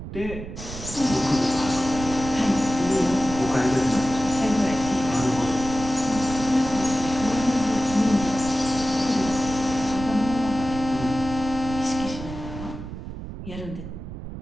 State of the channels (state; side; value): noise; right; rumble, 10 dB below the sound